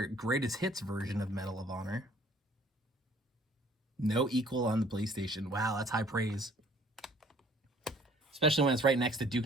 greatest hits version of Medal of Honor. No equal on the PlayStation. Wow, that's high praise. Especially when it's right next to Duke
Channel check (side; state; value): both; normal; correlation 0.56